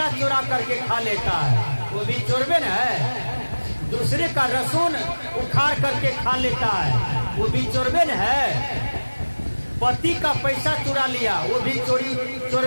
चुरा करके खा लेता है, वो भी चोरबे न है। दूसरे का लहसुन उखाड़ करके खा लेता है, वो भी चोरबे न है। पति का पैसा चुरा लिया, वो भी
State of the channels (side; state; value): both; inverted; correlation -1.00